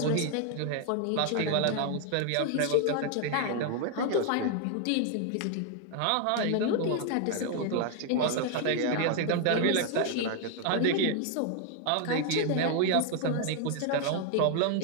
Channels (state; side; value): different; both; correlation 0.00